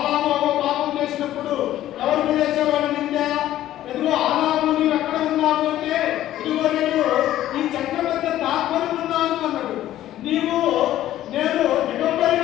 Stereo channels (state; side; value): quieter; right; 13.3 dB